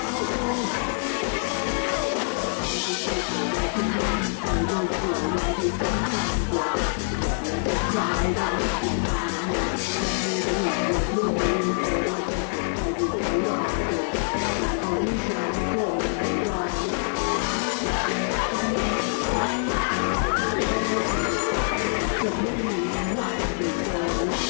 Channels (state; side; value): silent; right; digital silence